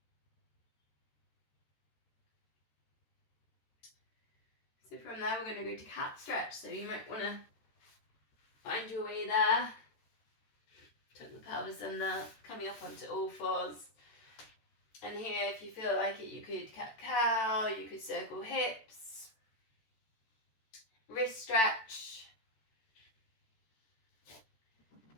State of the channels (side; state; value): right; late; 14 ms